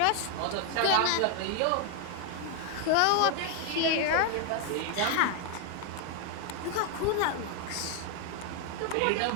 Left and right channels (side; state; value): both; different; correlation 0.00